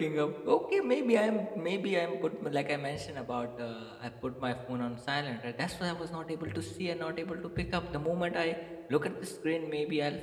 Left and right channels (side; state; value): both; identical; correlation 1.00